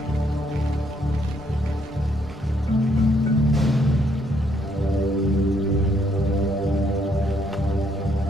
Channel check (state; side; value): noise; left; rumble, 21 dB below the sound